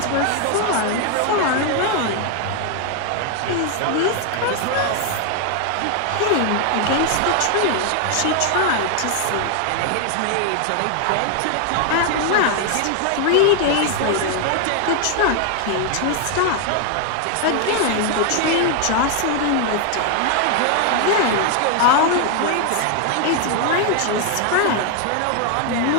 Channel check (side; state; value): both; different; correlation 0.00